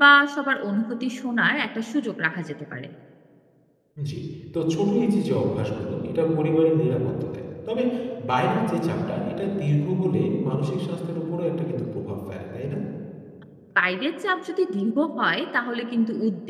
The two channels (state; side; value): identical; both; correlation 1.00